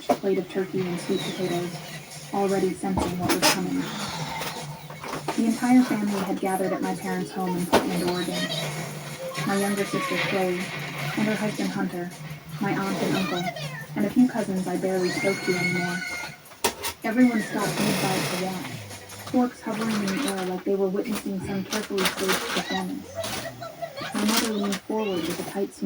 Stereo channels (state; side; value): identical; both; correlation 1.00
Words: plate of turkey and sweet potatoes, already sensing what was coming. The entire family had gathered at my parents' home in Portland, Oregon. My younger sister, Chloe, and her husband, Hunter, my aunt and uncle, and a few cousins I barely spoke to anymore. Everyone stopped mid-bite to watch, forks hovering in the air like they were witnessing some carefully staged performance. My mother leaned forward with a tight